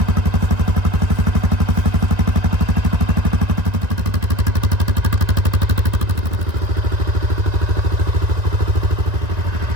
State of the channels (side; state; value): left; late; 2.1 ms